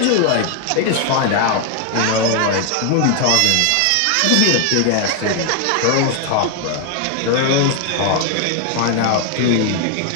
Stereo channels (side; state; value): both; different; correlation 0.00